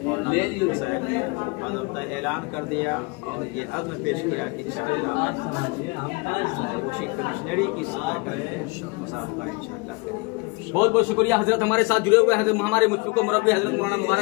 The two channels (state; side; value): quieter; right; 28.1 dB